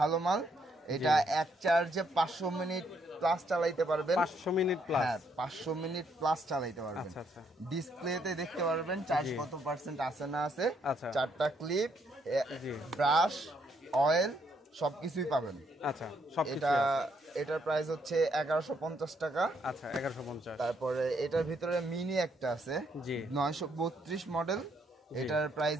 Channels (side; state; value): both; normal; correlation 0.72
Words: মাল। এটা এক চার্জে 500 মিনিট প্লাস চালাইতে পারবেন। 500 মিনিট প্লাস? হ্যাঁ, 500 মিনিট প্লাস চালাইতে পারবেন। আচ্ছা আচ্ছা। ডিসপ্লেতে দেখতে পারবেন চার্জ কত পার্সেন্ট আছে না আছে। আচ্ছা। 4টা ক্লিপ, ব্রাশ, অয়েল সবকিছুই পাবেন। আচ্ছা, সবকিছু। এটার প্রাইস হচ্ছে 1150 টাকা। আচ্ছা, 1150। তারপরে এটার ভিতরে মিনি একটা আছে, 932 মডেল, এটার প্রাইস